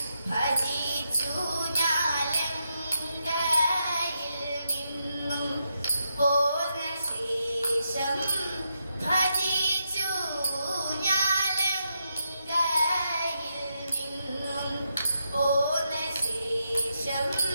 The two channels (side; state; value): both; inverted; correlation -0.83